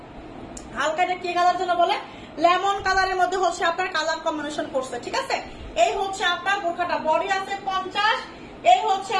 হালকা, এটা কি কালার যেন বলে, লেমন কালারের মধ্যে হচ্ছে আপনার কালার কম্বিনেশন করছে, ঠিক আছে। এই হচ্ছে আপনার বোরখাটা, বডি আছে 50, এই হচ্ছে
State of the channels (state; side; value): identical; both; correlation 1.00